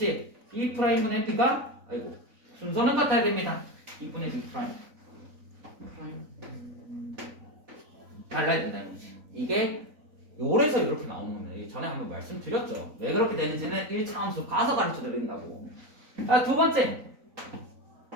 B 프라임분의 B가 순서는 같아야 됩니다. B분의 B 프라임. 달라야 된다는 거지. 이게 요래서 이렇게 나오는 겁니다. 전에 한번 말씀드렸죠. 왜 그렇게 되는지는 1차 함수 가서 가르쳐 드린다고. 두 번째.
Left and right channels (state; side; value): late; left; 3.9 ms